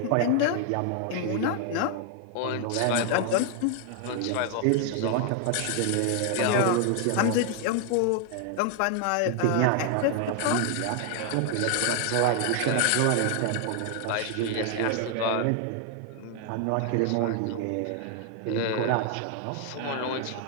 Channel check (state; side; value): different; both; correlation 0.00